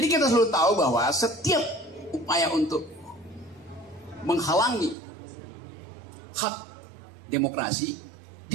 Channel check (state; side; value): drops out; left; at 5.0 s